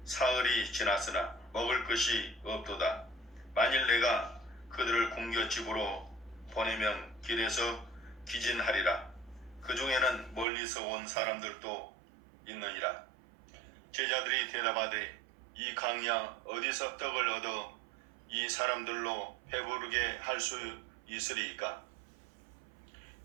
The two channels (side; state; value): left; drops out; at 10.5 s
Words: 사흘이 지났으나 먹을 것이 없도다. 만일 내가 그들을 굶겨 집으로 보내면 길에서 기진하리라. 그 중에는 멀리서 온 사람들도 있느니라. 제자들이 대답하되 이 강야 어디서 떡을 얻어 이 사람들로 배부르게 할 수 있으리이까?